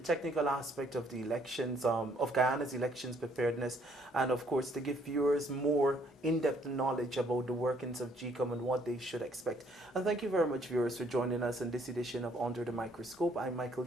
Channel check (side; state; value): both; normal; correlation 0.65